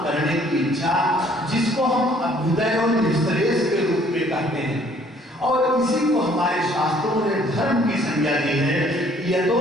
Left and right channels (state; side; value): normal; both; correlation 0.60